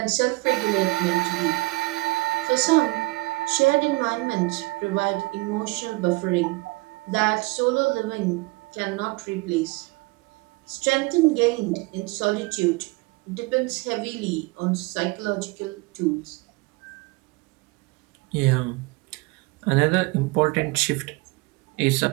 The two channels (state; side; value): quieter; left; 23.7 dB